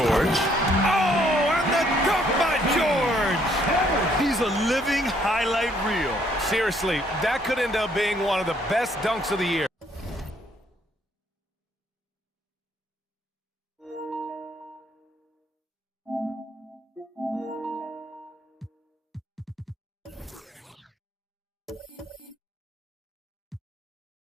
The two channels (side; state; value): both; normal; correlation 0.67